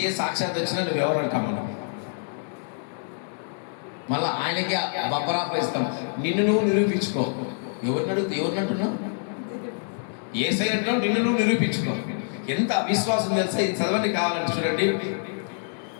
సాక్షాత్ వచ్చినా నువ్వు ఎవరు అంటాం మనం. మళ్ళీ ఆయనకి బబ్బరాప ఇస్తాం. నిన్ను నువ్వు నిరూపించుకో. ఎవరిని అంటున్నావు? ఏసయ్య అంటున్నావు, నిన్ను నువ్వు నిరూపించుకో. ఎంత అవిశ్వాసం తెలుసా? ఇది చదవండి కావాలంటే చూడండి.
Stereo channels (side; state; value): right; silent; 61 dB below the other